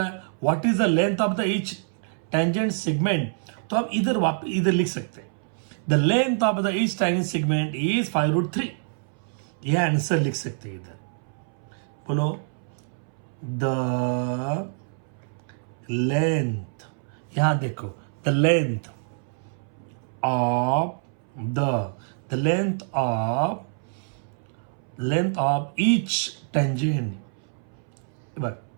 What is the length of the each tangent segment. तो हम इधर लिख सकते हैं the length of the each tangent segment is 5√3. ये आंसर लिख सकते हैं इधर. बोलो द लेंथ, यहां देखो the length of the length of each tangent, but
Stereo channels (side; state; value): left; silent; 61 dB below the other